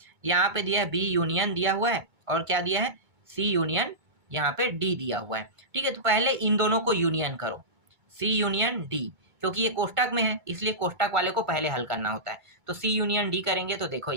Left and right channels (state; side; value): late; left; 2.2 ms